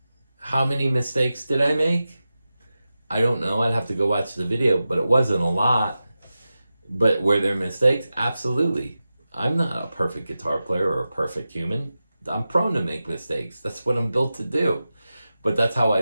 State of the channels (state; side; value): inverted; both; correlation -0.93